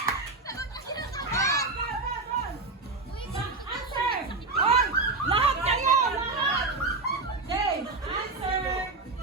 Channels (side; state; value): left; quieter; 3.6 dB